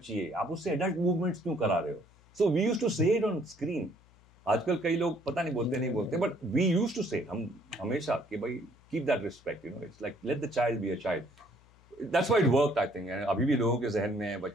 है, आप उससे एडल्ट मूवमेंट्स क्यों करा रहे हो। सो वी यूज्ड टू से इट ऑन स्क्रीन। आजकल कई लोग पता नहीं बोलते नहीं बोलते, बट वी यूज्ड टू से, हम हमेशा कि भाई keep that respect, you know, it's like let the child be a child. That's why it worked I think. अभी भी लोगों के जहन में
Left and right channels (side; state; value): left; noise; hum, 28 dB below the sound